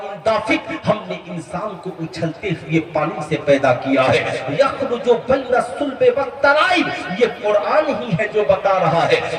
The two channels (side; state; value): both; identical; correlation 1.00